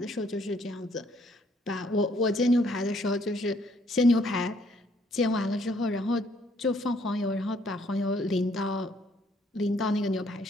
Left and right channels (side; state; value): both; normal; correlation 0.66